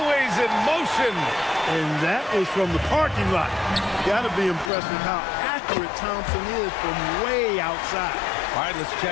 in motion. And that was from the parking lot. Got to be impressed with how accurate Thompson is from way outside. All right, let's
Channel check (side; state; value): right; drops out; at 4.7 s